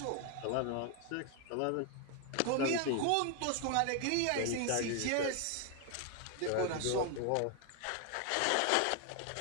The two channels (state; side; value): different; both; correlation 0.01